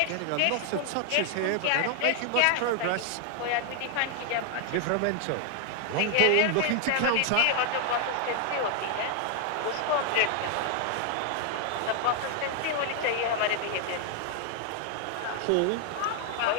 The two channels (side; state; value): both; different; correlation 0.00